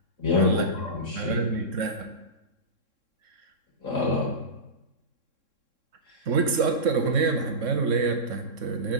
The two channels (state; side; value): late; left; 3.7 ms